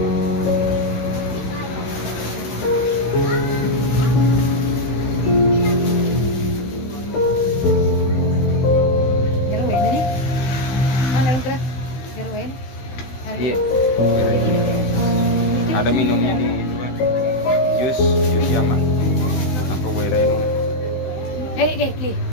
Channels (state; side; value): late; right; 16 ms